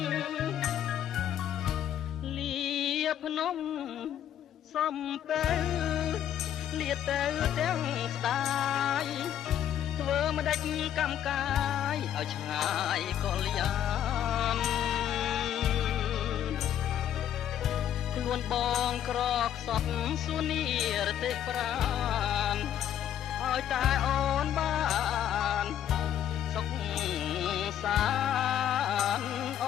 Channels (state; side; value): quieter; right; 10.5 dB